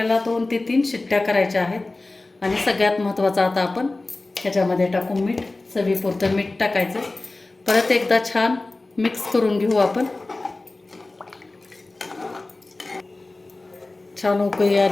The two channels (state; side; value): quieter; right; 3.1 dB